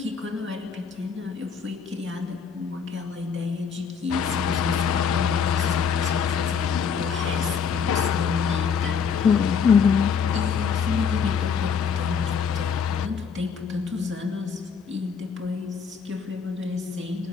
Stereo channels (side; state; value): right; quieter; 6.4 dB